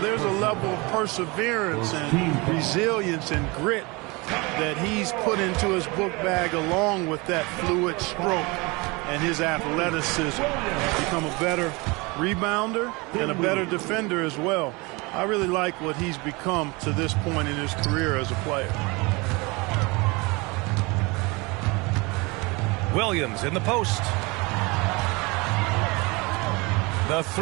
a level of perseverance and resilience and grit that he's put into his book bag along with that fluid stroke and his athleticism. He's become a better rebounder and a better defender as well. I really like what he's become to this point in his career as a player. Williams in the post. The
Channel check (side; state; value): left; quieter; 25.9 dB